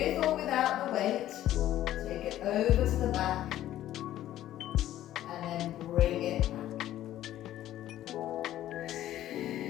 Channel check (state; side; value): quieter; right; 13.1 dB